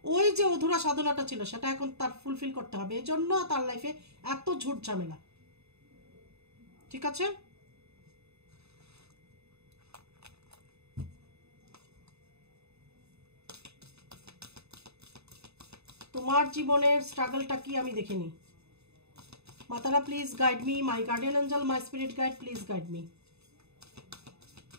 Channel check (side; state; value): left; late; 0.79 ms